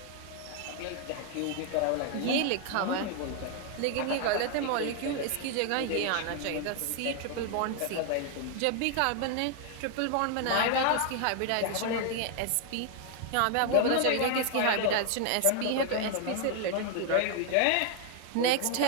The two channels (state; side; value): different; both; correlation 0.00